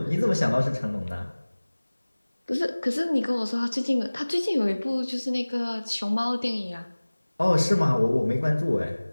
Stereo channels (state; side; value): inverted; both; correlation -1.00